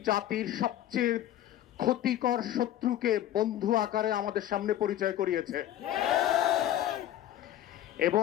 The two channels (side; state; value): right; quieter; 12.4 dB